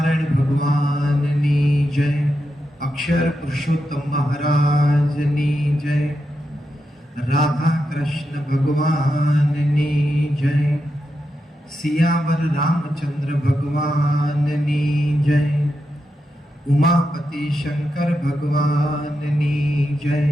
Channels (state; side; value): normal; both; correlation 0.86